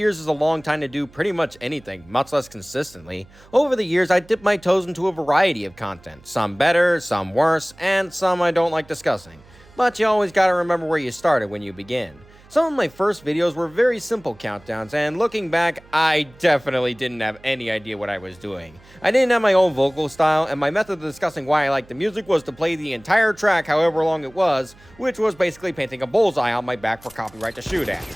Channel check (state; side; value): noise; right; hum, 25 dB below the sound